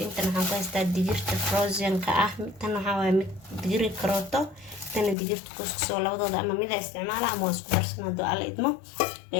ku haystaa digirta frozenka tan waxaa waa mid digir karooto tan digirta kuskusoo labadooda ama mid isticmaala ama isku darsan hado alla idmo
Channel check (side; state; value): right; drops out; at 5.2 s